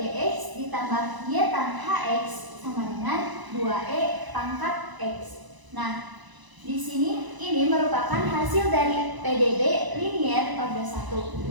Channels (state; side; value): late; left; 1.0 ms